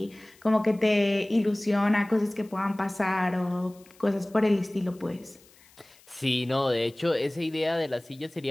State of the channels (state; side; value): noise; left; hiss, 27 dB below the sound